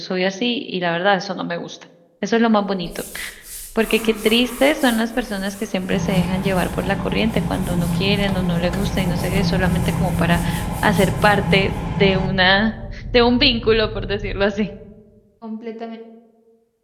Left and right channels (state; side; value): identical; both; correlation 1.00